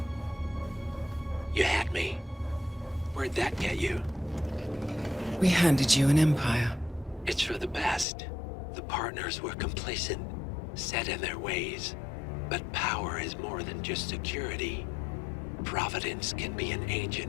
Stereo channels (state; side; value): drops out; right; at 8.1 s